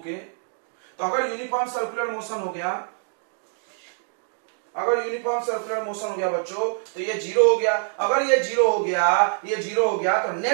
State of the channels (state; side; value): silent; left; 62 dB below the other